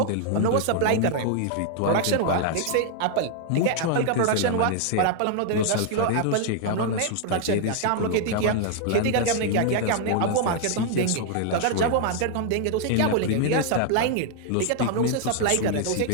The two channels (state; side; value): different; both; correlation 0.00